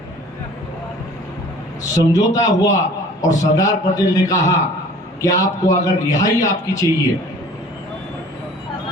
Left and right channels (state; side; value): normal; both; correlation 0.49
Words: समझौता हुआ और सरदार पटेल ने कहा कि आपको अगर रिहाई आपकी चाहिए,